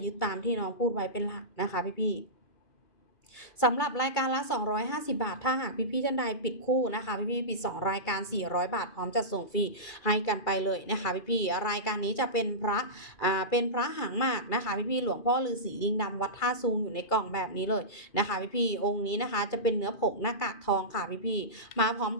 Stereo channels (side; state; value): right; late; 2.3 ms